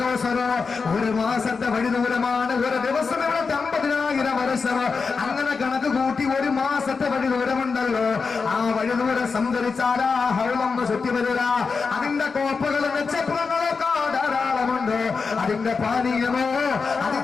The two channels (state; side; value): quieter; right; 4.9 dB